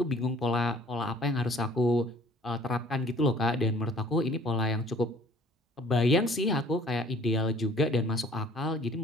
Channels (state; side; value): normal; both; correlation 0.54